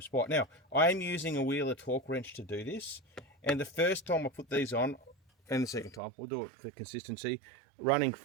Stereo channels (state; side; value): drops out; left; at 6.0 s